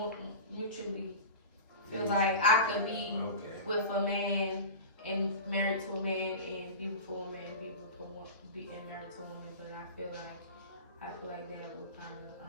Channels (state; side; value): inverted; both; correlation -0.31